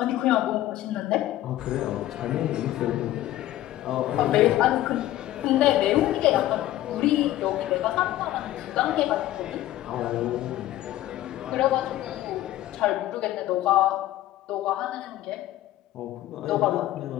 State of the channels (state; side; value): quieter; right; 14.5 dB